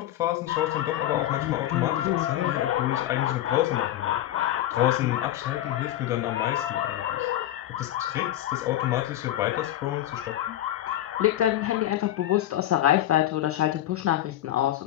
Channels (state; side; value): quieter; right; 13.3 dB